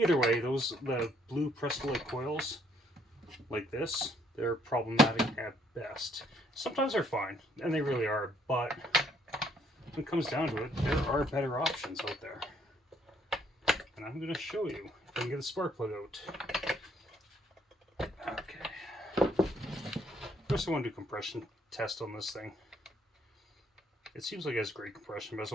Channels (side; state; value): both; normal; correlation 0.67